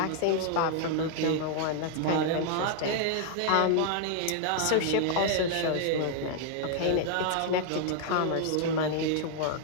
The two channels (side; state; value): both; different; correlation 0.00